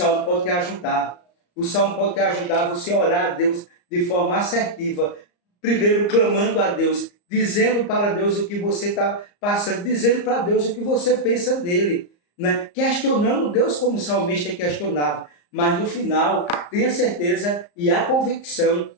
pode te ajudar. O Salmo pode te ajudar a você orar a Deus de forma assertiva, primeiro clamando a Deus, dizendo para Deus o que você está passando, dizendo para Deus o que você pensa dele, né? Questionando Deus como o salmista questionava, mas no final tenha certeza e a convicção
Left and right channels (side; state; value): right; late; 34 ms